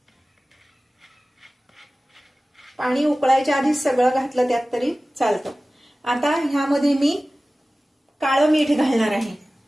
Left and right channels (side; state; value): both; normal; correlation 0.97